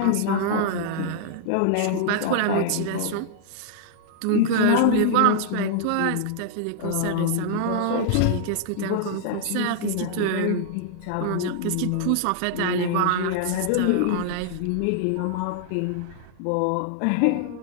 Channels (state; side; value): different; both; correlation -0.01